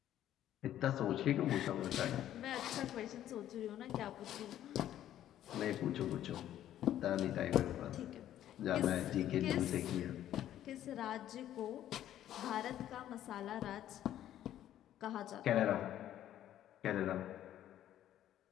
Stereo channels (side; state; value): right; quieter; 11.9 dB